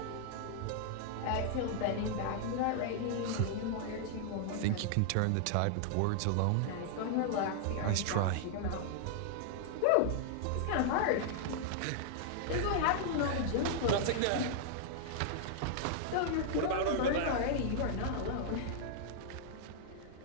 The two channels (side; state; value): both; different; correlation -0.01